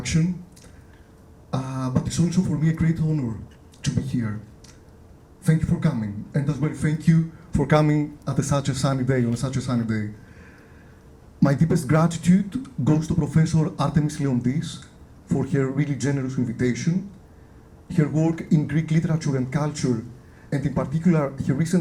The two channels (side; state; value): both; identical; correlation 1.00